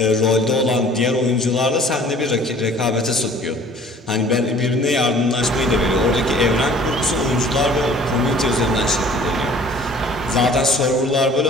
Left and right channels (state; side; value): normal; both; correlation 0.51